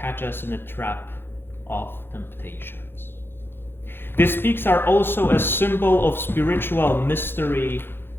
us in a trap of temptations. These pigs are also a symbol of spiritual mystery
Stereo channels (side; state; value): right; late; 0.10 ms